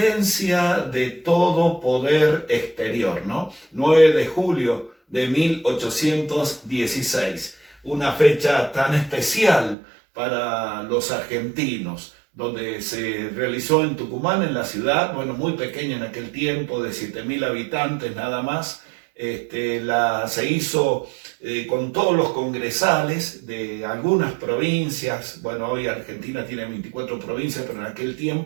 de todo poder exterior, ¿no? 9 de julio de 1816, una fecha tan especial para los argentinos, donde se realizó en Tucumán, en la ciudad, bueno, muy pequeña en aquel tiempo, de 7.000 habitantes nada más. Se hizo con todos los congresales de algunas provincias. Bueno, hoy Argentina tiene 24 provincias, pero en aquel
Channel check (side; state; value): left; drops out; at 9.8 s